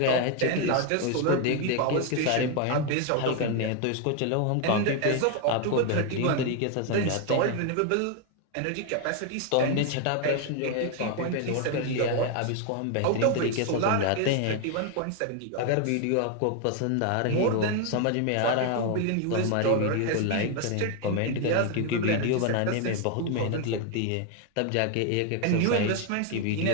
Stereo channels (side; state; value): both; different; correlation 0.01